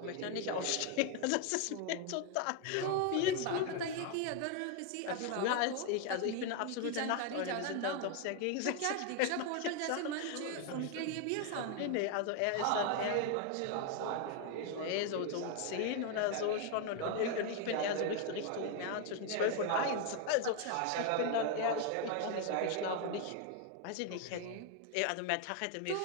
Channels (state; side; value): different; both; correlation 0.01